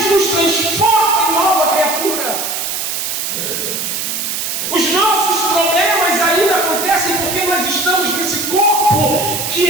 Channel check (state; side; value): noise; right; hiss, 3 dB below the sound